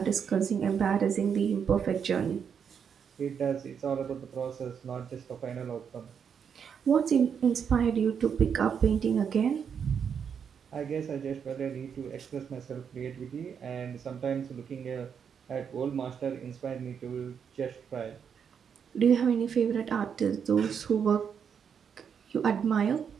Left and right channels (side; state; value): left; quieter; 7.3 dB